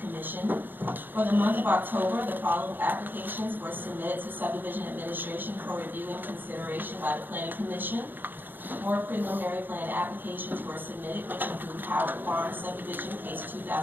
For the month of October, the following applications were submitted to Subdivision Administration for review and consideration by the Planning Commission. 4 preliminary plan applications were submitted, which include Howard Farm Subdivision, case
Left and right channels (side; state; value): left; late; 0.092 ms